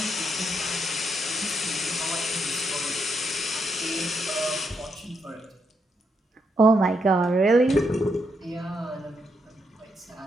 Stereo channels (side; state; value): both; normal; correlation 0.79